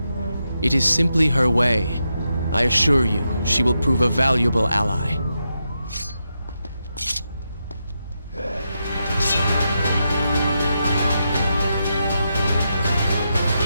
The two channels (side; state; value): both; inverted; correlation -0.85